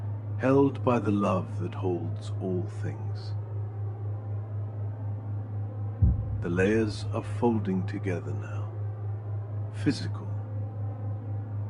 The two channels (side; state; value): both; identical; correlation 1.00